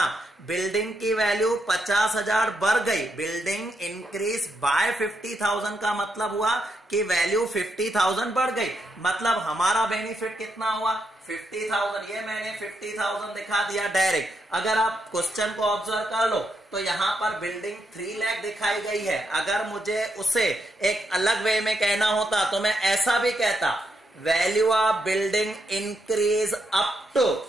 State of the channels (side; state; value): both; normal; correlation 0.80